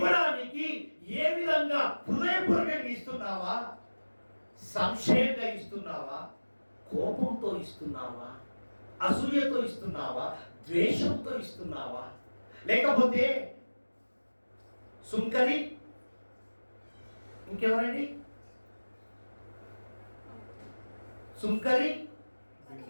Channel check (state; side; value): inverted; both; correlation -1.00